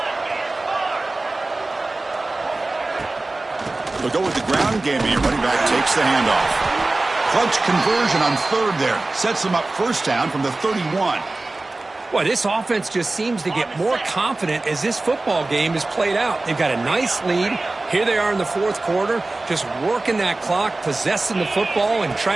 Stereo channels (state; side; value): quieter; left; 3.1 dB